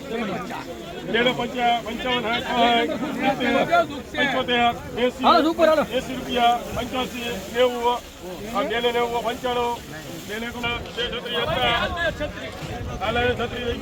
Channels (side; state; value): both; identical; correlation 1.00